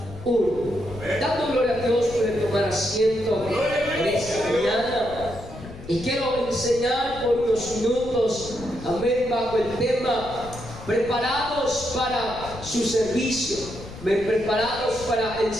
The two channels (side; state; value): left; noise; rumble, 14 dB below the sound